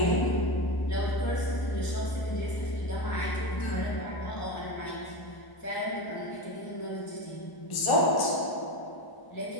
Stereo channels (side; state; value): right; late; 1.0 ms